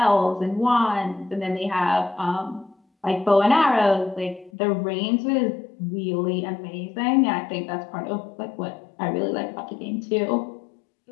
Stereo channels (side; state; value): right; drops out; at 4.5 s